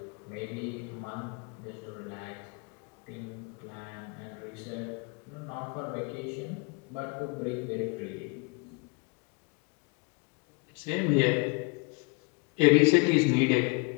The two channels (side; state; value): right; quieter; 32.7 dB